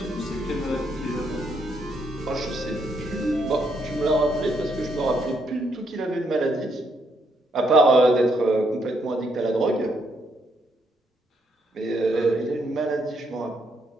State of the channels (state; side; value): normal; both; correlation 0.75